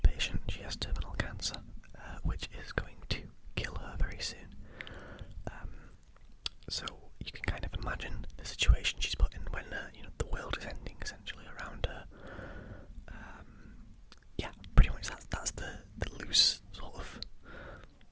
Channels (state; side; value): identical; both; correlation 1.00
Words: patient. She has terminal cancer, which is going to kill her very soon. So you can kind of imagine the situation she's put in when the world is ending essentially around her. Yeah, pretty much that's the loose sort of